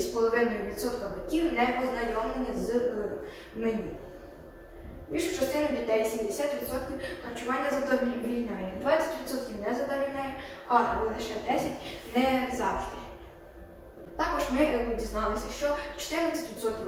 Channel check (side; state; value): both; identical; correlation 1.00